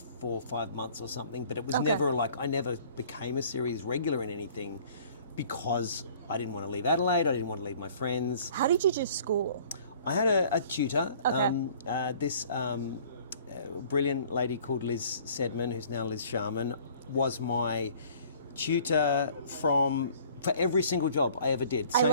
or 5 months or something, but it was never like, I never became a series regular in anything because I didn't want to leave Adelaide, I didn't want to leave my friends. How did you do school? I had a tutor, Okay. this brilliant lady called Liz Sedman, who's now Liz Sharman, was my tutor for every single job I ever did. I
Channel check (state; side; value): inverted; both; correlation -0.53